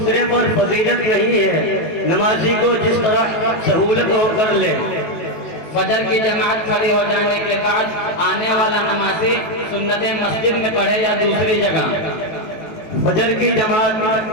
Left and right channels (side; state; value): right; late; 19 ms